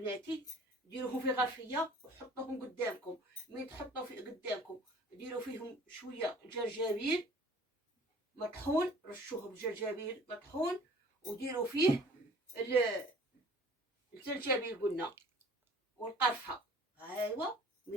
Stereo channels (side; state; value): both; normal; correlation 0.50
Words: ديروهم في غرفيه وحطوهم قدامكم. من تحطوا في قدامكم ديروا فيهم شويه جرجابيل مطحون، رشوه بالجرجابيل مطحون، وديروا فيه الجرجابيل قلنا والقرفه. ايوا